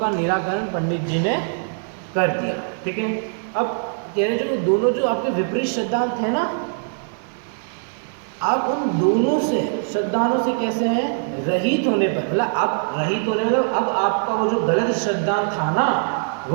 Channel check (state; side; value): silent; left; digital silence